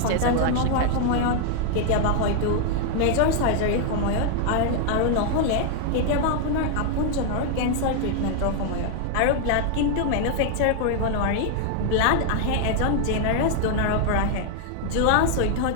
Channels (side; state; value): both; different; correlation 0.00